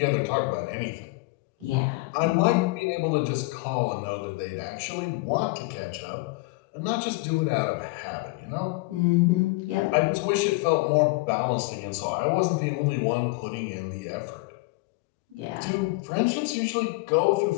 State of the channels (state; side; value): quieter; right; 24.4 dB